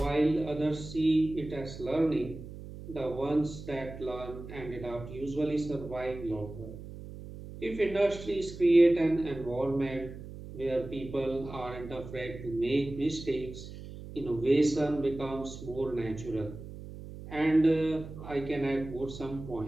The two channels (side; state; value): right; noise; hum, 12 dB below the sound